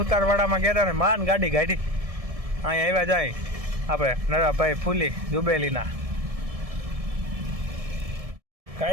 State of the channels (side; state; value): left; late; 1.7 ms